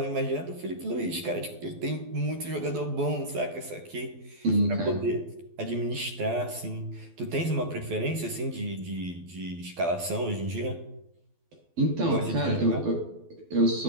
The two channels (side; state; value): left; late; 12 ms